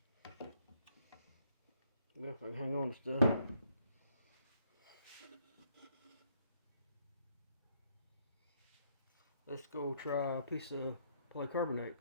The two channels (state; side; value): inverted; both; correlation -0.71